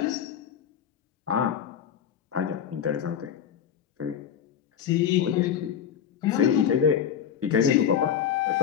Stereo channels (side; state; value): right; quieter; 8.8 dB